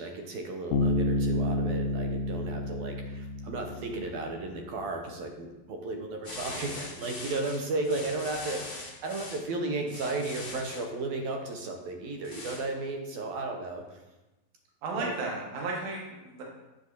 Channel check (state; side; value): late; left; 12 ms